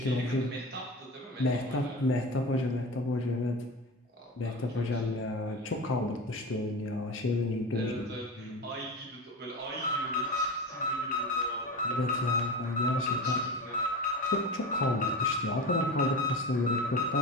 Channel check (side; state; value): both; normal; correlation 0.27